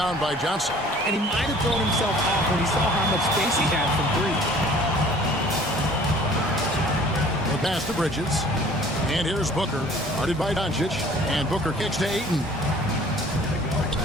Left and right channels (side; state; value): both; normal; correlation 0.51